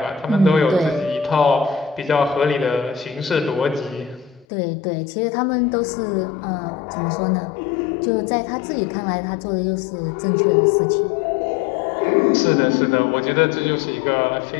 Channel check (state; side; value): drops out; right; at 4.5 s